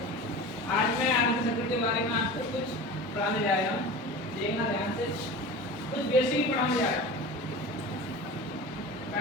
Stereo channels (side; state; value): both; normal; correlation 0.33